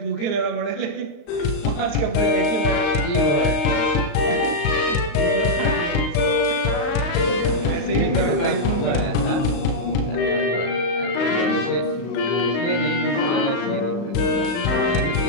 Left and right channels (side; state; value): right; late; 35 ms